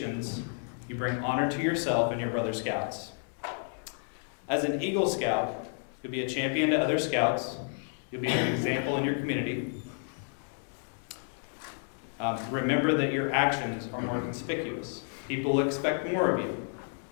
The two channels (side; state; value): right; silent; 57 dB below the other